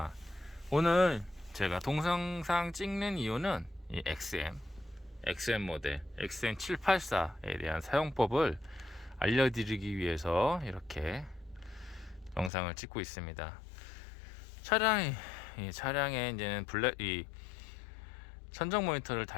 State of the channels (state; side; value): drops out; right; at 12.5 s